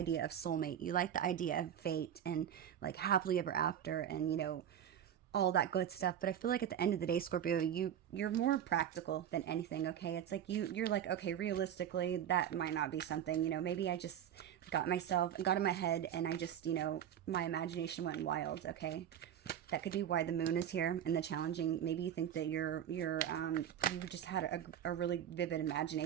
of soulmate. You like the idea of fate and like happily ever after and, you know, all that good stuff. But I feel like at the end of the day, Scorpio, you're more practical than anything, okay? It's like you're like, okay, realistically, that might not be something, you know, maybe I just got in my head and I just, you know, my imagination went wild, okay? That could be why the moon is here and the challenging. Maybe you think that you just had a really vivid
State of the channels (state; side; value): quieter; left; 9.9 dB